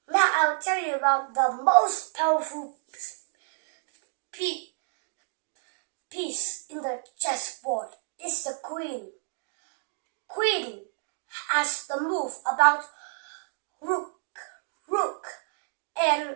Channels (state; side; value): silent; left; digital silence